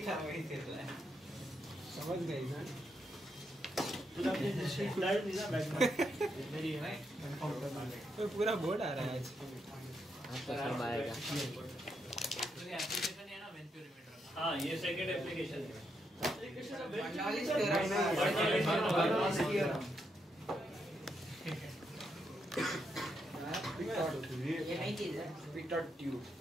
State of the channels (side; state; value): both; normal; correlation 0.80